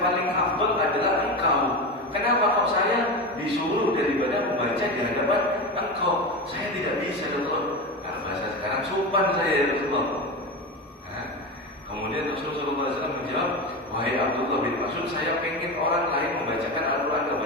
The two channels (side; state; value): both; normal; correlation 0.22